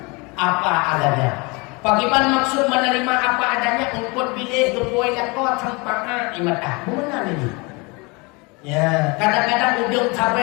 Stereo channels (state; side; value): quieter; right; 27.7 dB